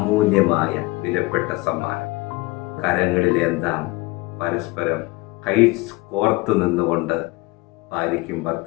വിലപ്പെട്ട സമ്മാനം. കരങ്ങളിലെന്താം പരസ്പരം കൈ കോർത്തു നിന്നുകൊണ്ട് ഭാര്യയ്ക്കും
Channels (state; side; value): quieter; right; 23.2 dB